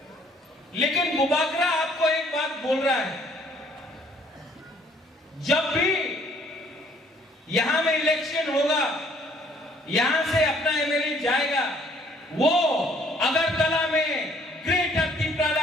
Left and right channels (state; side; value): normal; both; correlation 0.61